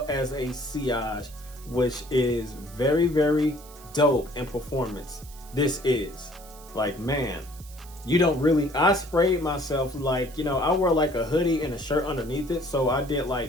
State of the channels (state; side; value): noise; right; hiss, 20 dB below the sound